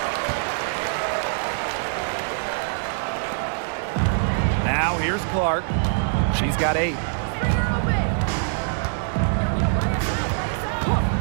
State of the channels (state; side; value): silent; left; digital silence